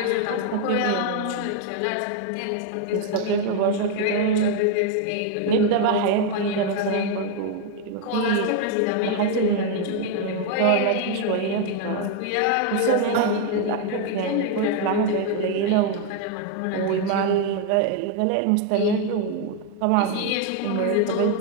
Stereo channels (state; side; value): different; both; correlation 0.00